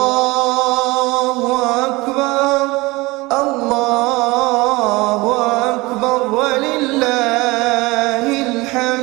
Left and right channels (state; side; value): quieter; left; 22.6 dB